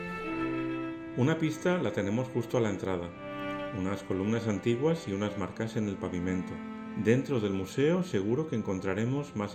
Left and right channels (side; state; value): both; identical; correlation 1.00